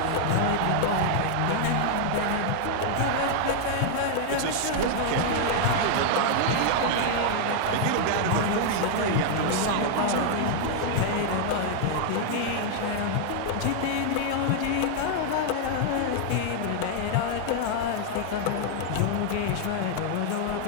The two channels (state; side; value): different; both; correlation 0.00